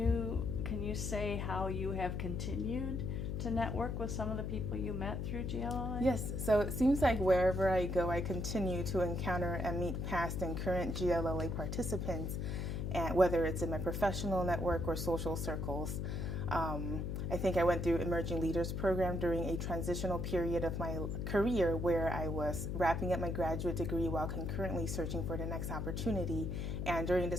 say how you have continued to network with some of the people you met through GLLA? Yes, so it seems like wherever I go, I continue to encounter and meet past and current GLLA participants, and whether it's in my professional network or social circles. I think I went through Emerging Leaders Program during a transitional period of my career where I was wrapping up my graduate degree while concurrently searching for the next opportunity. And during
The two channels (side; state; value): left; noise; hum, 2 dB below the sound